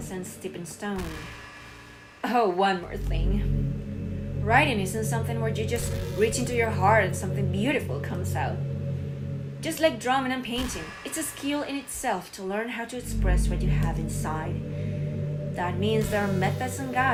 and stepping stone. Oh, one more thing. Writing isn't something where you just reach into your heart and something beautiful comes out. Just like drawing and painting, it's a skill in itself to learn how to express what you have inside. That means there are methods and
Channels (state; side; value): identical; both; correlation 1.00